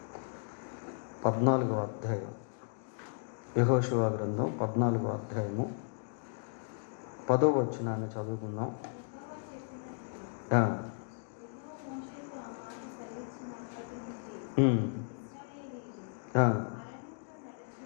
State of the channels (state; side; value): silent; right; digital silence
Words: 14వ అధ్యాయం. యెహోషువ గ్రంథం 14వ అధ్యాయము 10వ వచనాన్ని చదువుకుందాం.